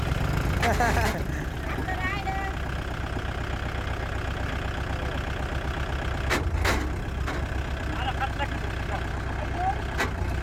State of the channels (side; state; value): both; identical; correlation 1.00